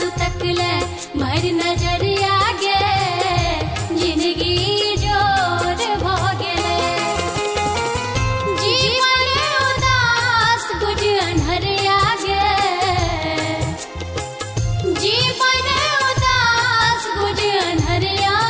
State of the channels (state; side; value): identical; both; correlation 1.00